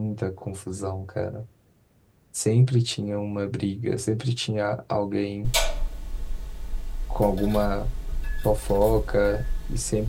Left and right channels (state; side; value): identical; both; correlation 1.00